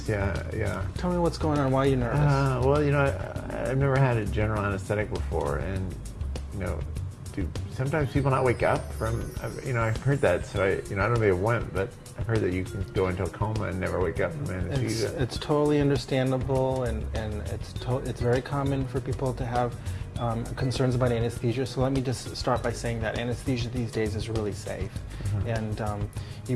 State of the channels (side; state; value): both; identical; correlation 1.00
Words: Yeah. Tell me what's going on. Why are you nervous? Well, I've never had a general anesthetic before, and do sometimes people not wake up from? I've heard that, so I don't know if they went, but I've heard that you can go into a coma and never wake up from anesthesia. It's totally understandable, and it's very common for people to have concerns about anesthesia. So let me just start by saying that anesthesia these days is really safe. And